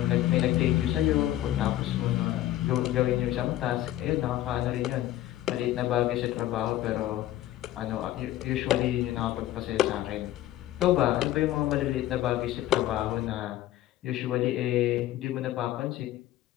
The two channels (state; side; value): quieter; right; 14.0 dB